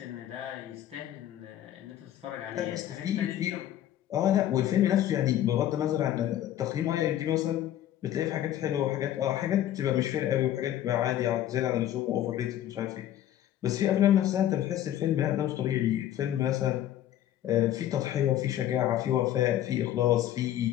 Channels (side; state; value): right; quieter; 12.1 dB